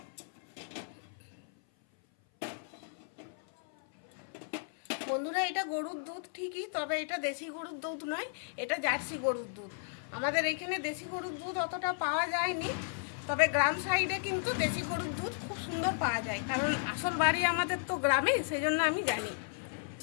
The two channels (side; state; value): right; silent; 55 dB below the other